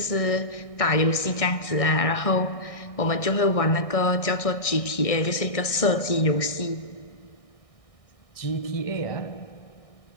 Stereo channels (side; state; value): right; late; 1.6 ms